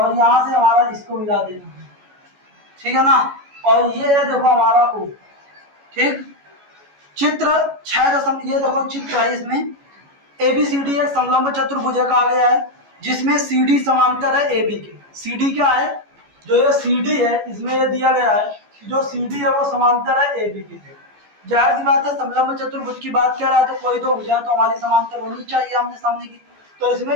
यहां से हमारा इसको मिला देना है, ठीक है ना। और ये है देखो हमारा ओ, ठीक। चित्र 6 ये देखो चित्र है, इसमें ABCD एक समलंब चतुर्भुज कहा गया है जिसमें CD समांतर है AB के। CD क्या है, जो ये CD है इसमें ये दिया गया है कि जो CD है वो समांतर है AB के। जाहिर सी बात है समलंब चतुर्भुज की बात कर रहा है तो कोई तो भुजा तो हमारी समांतर होनी चाहिए आमने सामने की, तो इसमें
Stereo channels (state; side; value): late; left; 14 ms